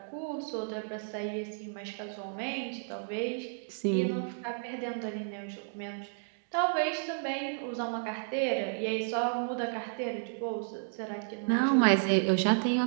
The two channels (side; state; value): left; silent; digital silence